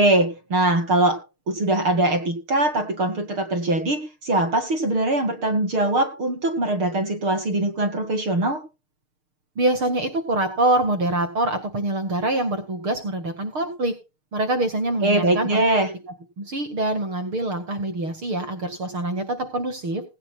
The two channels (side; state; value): left; late; 6.6 ms